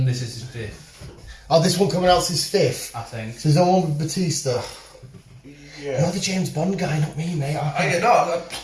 This is his 5th, Oh, this one coming out's his 5th. I think. So there's no one with Batista. Yeah. You're the James Bond guy, not me, mate. I know,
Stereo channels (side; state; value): both; identical; correlation 1.00